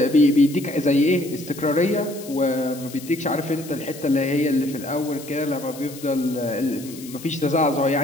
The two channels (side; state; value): left; noise; hiss, 16 dB below the sound